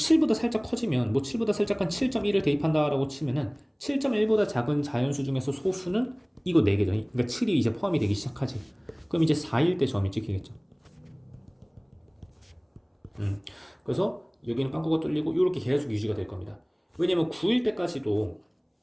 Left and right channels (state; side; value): identical; both; correlation 1.00